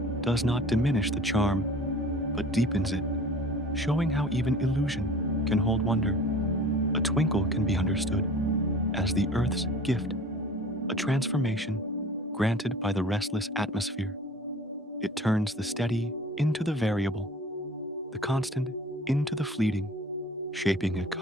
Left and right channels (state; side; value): normal; both; correlation 0.44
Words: does not diminish the charm, but deepens it, showing how even illusion can hold wonder. A twinkle can be understood as the earth's gift, a transformation granted by the restless atmosphere. It turns the steady into the variable, the constant into the fleeting, shaping a